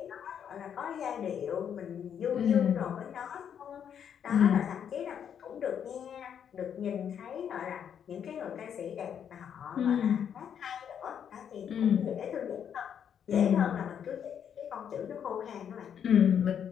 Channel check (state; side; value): quieter; right; 8.4 dB